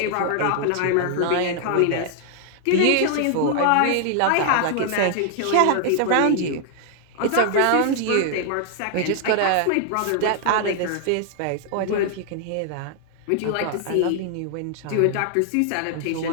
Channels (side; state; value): both; different; correlation 0.00